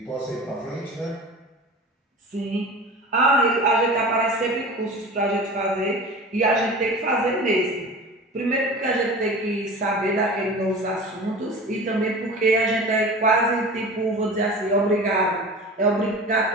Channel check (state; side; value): normal; both; correlation 0.35